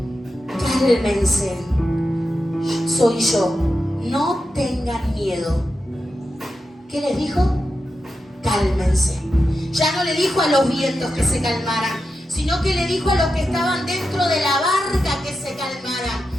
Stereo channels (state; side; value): normal; both; correlation 0.89